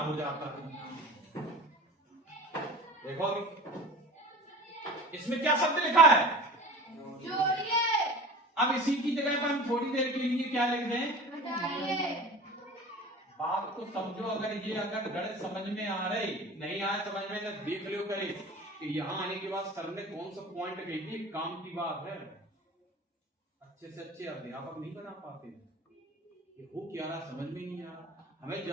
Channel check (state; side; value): normal; both; correlation 0.38